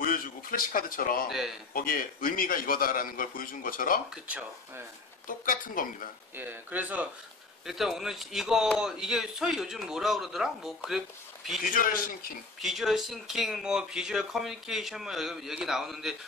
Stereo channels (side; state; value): right; quieter; 3.7 dB